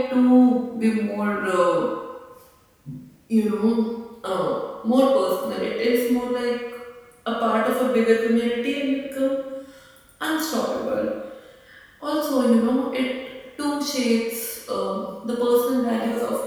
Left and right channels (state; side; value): identical; both; correlation 1.00